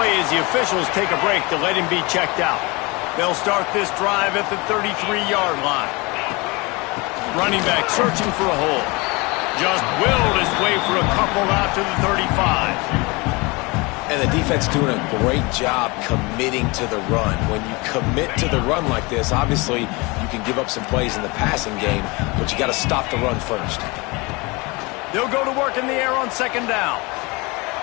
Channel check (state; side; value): quieter; right; 26.0 dB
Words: as the officials take a break to let him be checked out. They'll start this drive at the 33-yard line. Running back searching for a hole. Just willed his way for a couple out to the 35. And the defense doing a great job committing to the run. When you commit to the run like this, obviously you can give up some plays in the passing game, but you got to stop the run first. They'll go to work in the air on 2nd down.